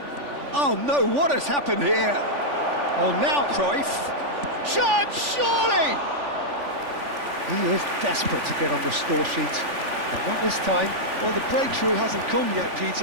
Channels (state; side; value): late; left; 3.5 ms